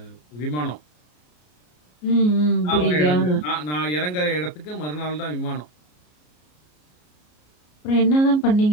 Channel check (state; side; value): late; right; 33 ms